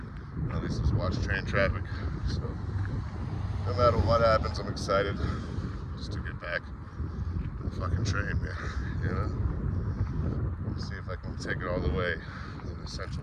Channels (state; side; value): identical; both; correlation 1.00